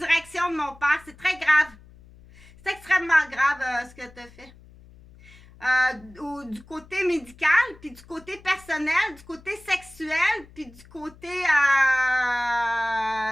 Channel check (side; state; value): left; noise; hum, 23 dB below the sound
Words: de mon père. C'est très grave. C'est extrêmement grave ce que tu as fait. Du côté médical, puis du côté personnel, du côté sexuel, puis du côté